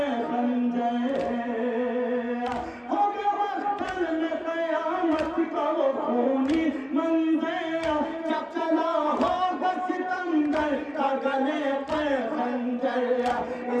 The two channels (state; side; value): identical; both; correlation 1.00